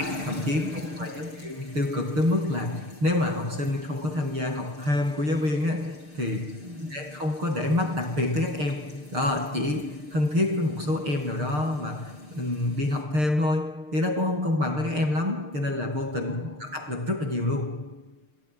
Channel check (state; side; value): late; left; 6.7 ms